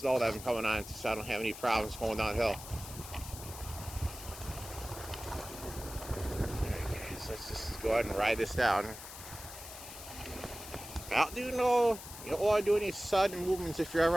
that I'm coming on, so I don't have any problems going downhill. Alright, guys, let's just go ahead and ride this down. You don't want to do any sudden movements if you're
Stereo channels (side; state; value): left; noise; hiss, 13 dB below the sound